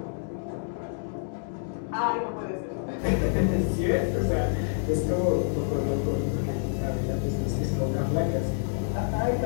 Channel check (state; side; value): silent; right; digital silence